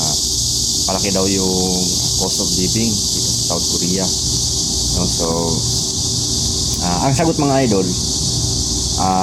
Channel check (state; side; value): identical; both; correlation 1.00